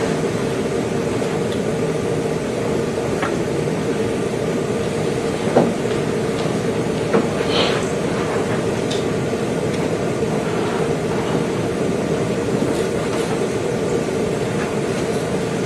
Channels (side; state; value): both; identical; correlation 1.00